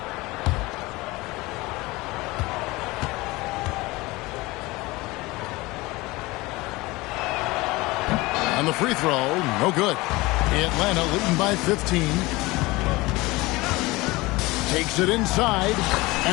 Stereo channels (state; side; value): quieter; right; 21.6 dB